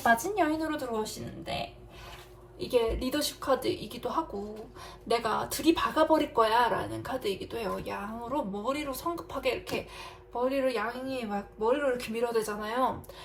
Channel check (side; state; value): both; identical; correlation 1.00